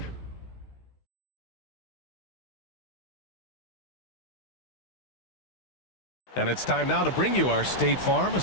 And it's time now to bring you our State Farm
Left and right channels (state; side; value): late; right; 16 ms